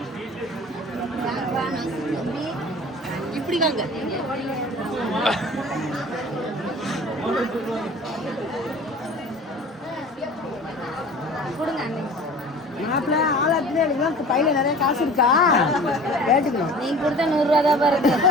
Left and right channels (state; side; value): normal; both; correlation 0.42